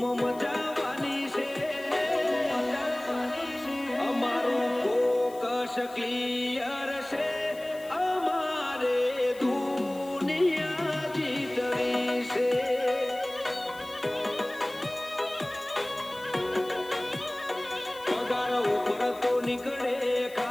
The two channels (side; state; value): left; noise; hiss, 21 dB below the sound